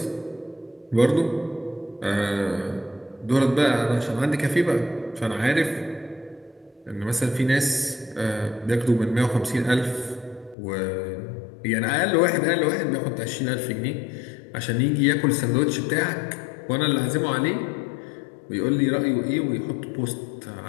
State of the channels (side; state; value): right; drops out; at 10.6 s